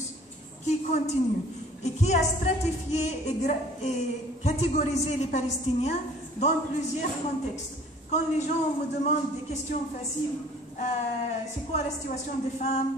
qui continue et qui a stratifié et catégorisé les Palestiniens dans plusieurs contextes. Quand les gens me demandent des questions faciles, c'est quoi la situation des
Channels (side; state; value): both; normal; correlation 0.51